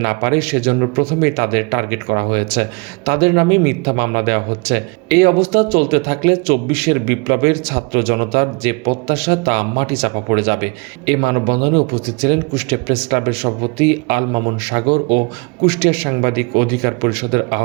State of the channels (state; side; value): quieter; left; 29.4 dB